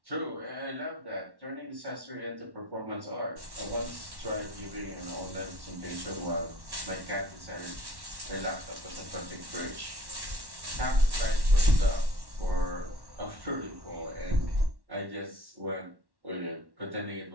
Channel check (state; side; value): late; left; 1.1 ms